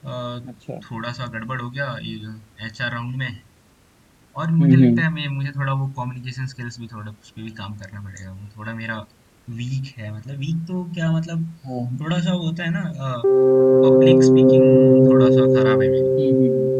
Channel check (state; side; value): identical; both; correlation 1.00